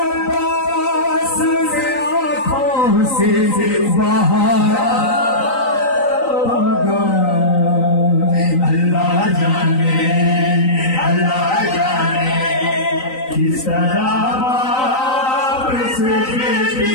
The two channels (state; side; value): late; right; 3.9 ms